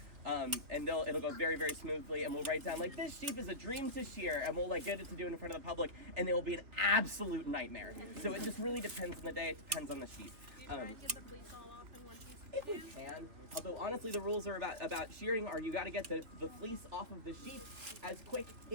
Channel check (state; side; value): late; left; 3.1 ms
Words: And it'll go very, very smoothly, and we'll write down like, this sheep is a dream to shear, and we'll like get it to do it in front of the public, and it will be an absolute nightmare. So it just really depends on the day. It depends on the sheep. Do you try and get the fleece all off in one piece? If we can. Although honestly, the rules are about shearing are you got to get the fleece off of the sheep as